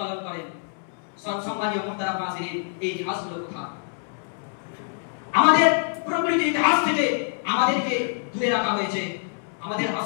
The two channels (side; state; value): right; silent; 61 dB below the other